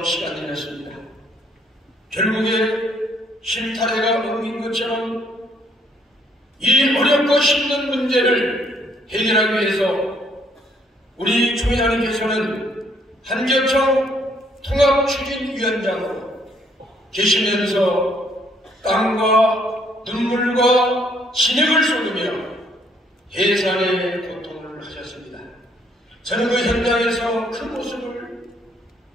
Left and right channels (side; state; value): both; normal; correlation 0.66